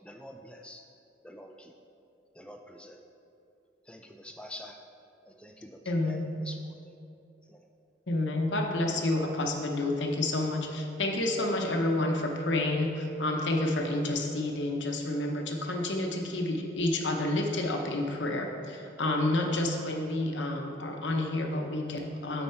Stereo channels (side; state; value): both; normal; correlation 0.57